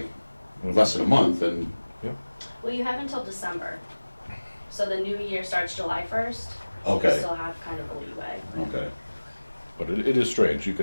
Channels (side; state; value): both; inverted; correlation -1.00